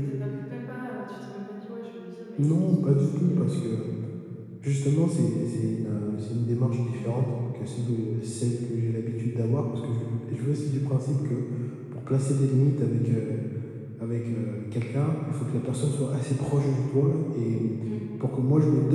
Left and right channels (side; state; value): both; identical; correlation 1.00